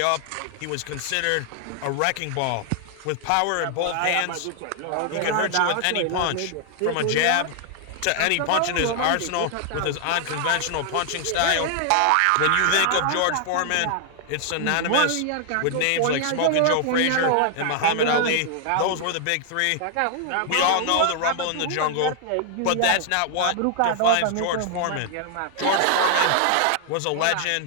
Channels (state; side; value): different; both; correlation 0.00